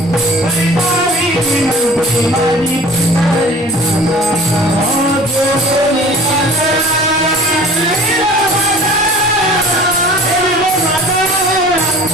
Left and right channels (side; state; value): both; normal; correlation 0.45